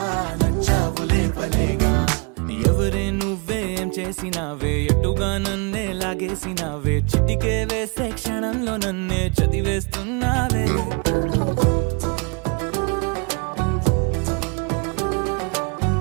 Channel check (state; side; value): quieter; left; 32.3 dB